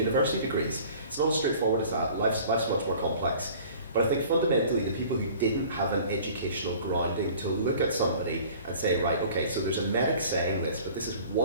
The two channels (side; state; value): both; inverted; correlation -0.48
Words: degrees. It's not as straightforward as that. Life's much more complex. But I think fundamentally the people who didn't have an educational grounding to look at somebody and say, right, okay, so there's a medic saying this, but this is